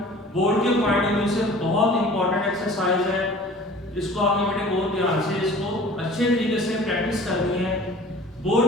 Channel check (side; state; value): both; normal; correlation 0.45